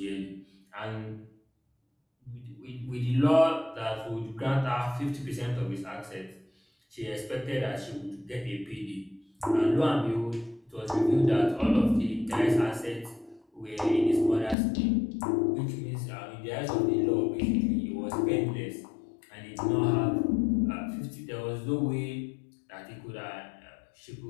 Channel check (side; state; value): right; drops out; at 14.6 s